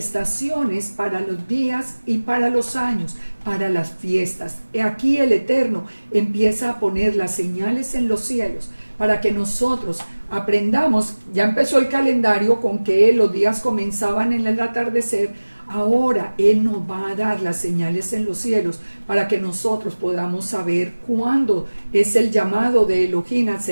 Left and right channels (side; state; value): both; inverted; correlation -1.00